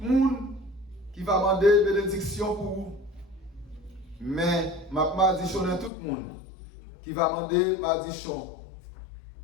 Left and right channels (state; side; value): drops out; right; at 5.9 s